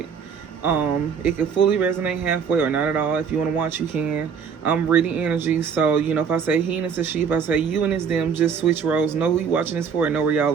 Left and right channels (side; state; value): left; quieter; 6.6 dB